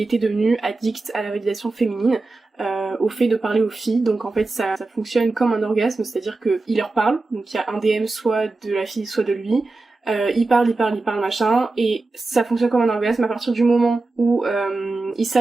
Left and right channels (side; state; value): left; quieter; 3.4 dB